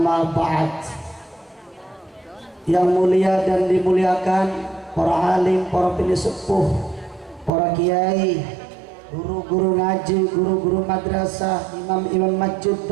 ba'd. Yang mulia dan dimuliakan para alim, para sepuh, para kiai, guru-guru ngaji, guru-guru madrasah, imam-imam masjid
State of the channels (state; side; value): drops out; left; at 7.5 s